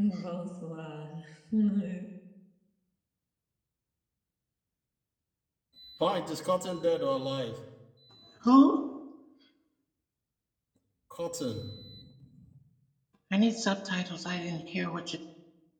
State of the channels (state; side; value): identical; both; correlation 1.00